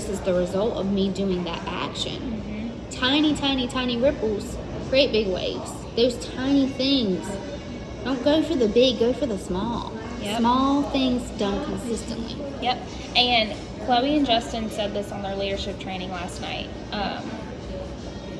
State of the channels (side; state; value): both; identical; correlation 1.00